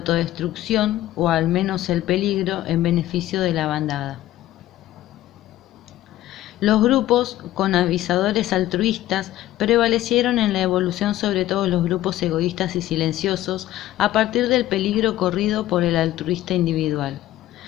o al menos el peligro en beneficio de la bandada. Los grupos con avisadores altruistas prevalecieron en la evolución sobre todos los grupos egoístas y silenciosos a partir del peligro corrido por el altruista individual.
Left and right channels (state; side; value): quieter; right; 14.5 dB